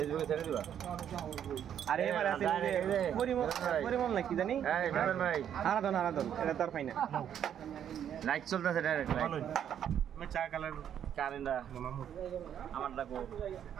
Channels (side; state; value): left; quieter; 9.4 dB